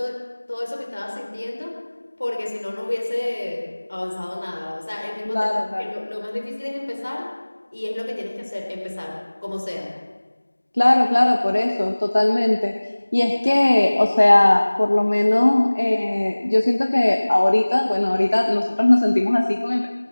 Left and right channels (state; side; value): inverted; both; correlation -1.00